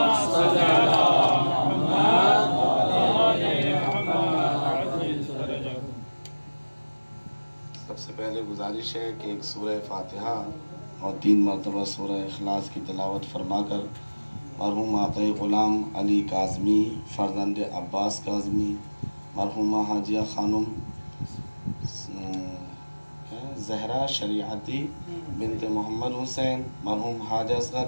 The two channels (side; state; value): both; inverted; correlation -1.00